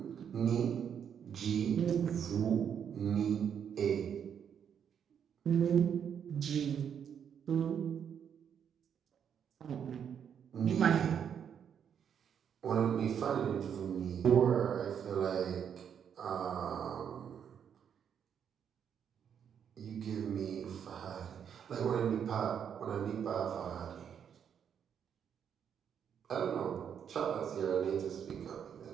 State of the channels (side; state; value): left; quieter; 8.1 dB